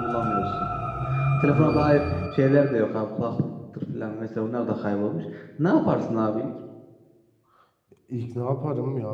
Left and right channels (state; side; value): identical; both; correlation 1.00